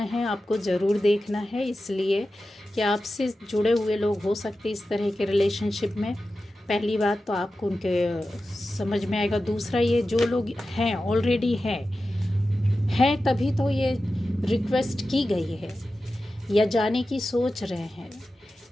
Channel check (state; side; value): normal; both; correlation 0.93